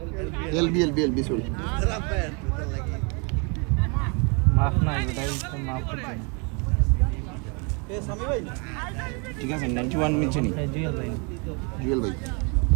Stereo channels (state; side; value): quieter; left; 33.6 dB